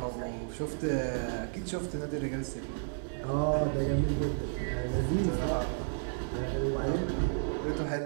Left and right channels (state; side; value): silent; left; 56 dB below the other